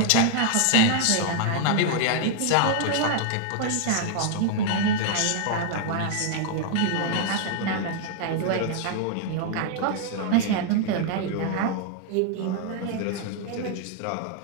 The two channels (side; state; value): both; different; correlation 0.00